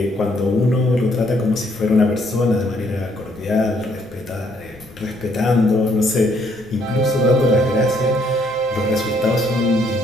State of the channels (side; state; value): both; normal; correlation 0.68